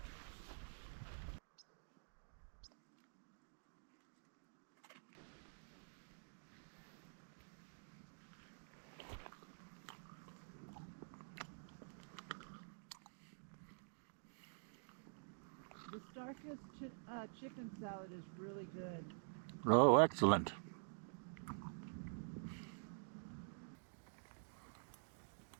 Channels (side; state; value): left; silent; digital silence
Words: The Starkist chicken salad is really good. Oh, excellent.